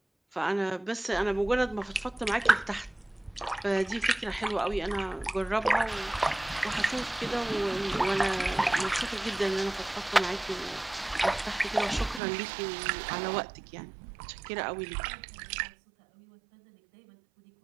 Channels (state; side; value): drops out; left; at 12.2 s